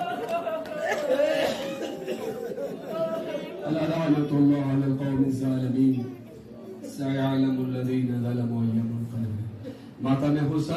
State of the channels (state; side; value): identical; both; correlation 1.00